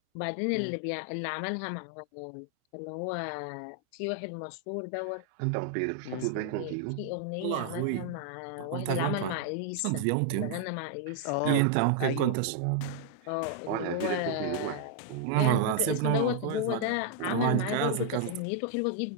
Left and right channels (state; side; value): different; both; correlation 0.00